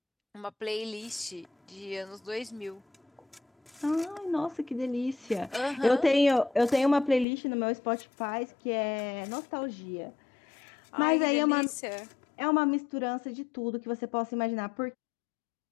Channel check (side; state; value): right; drops out; at 7.2 s